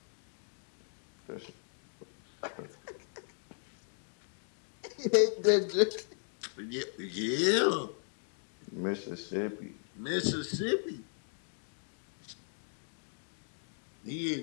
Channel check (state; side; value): silent; right; 53 dB below the other